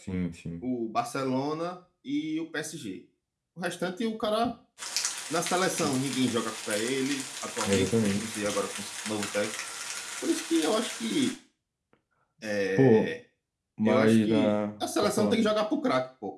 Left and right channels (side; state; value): both; identical; correlation 1.00